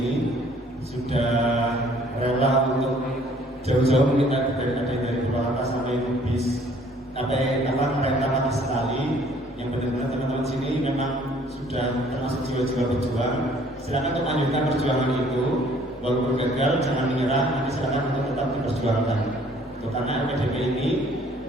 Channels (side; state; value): both; normal; correlation 0.58